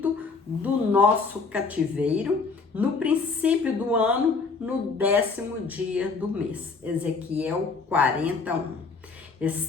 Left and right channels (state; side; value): quieter; right; 4.6 dB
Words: do nosso cativeiro, no princípio do ano, no 10º dia do mês. Ezequiel 40:1.